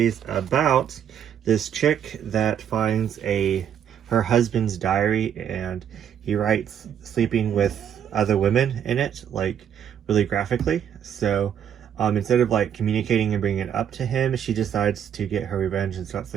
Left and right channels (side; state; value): left; quieter; 9.0 dB